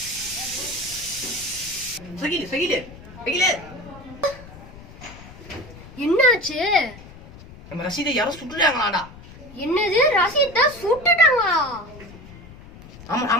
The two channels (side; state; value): left; noise; rumble, 18 dB below the sound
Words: என்னாச்சு? நம்ம ரசீதை யாரோ சுட்டுட்டாங்களாடா. என்னது? ரசீதை சுட்டுட்டாங்களா?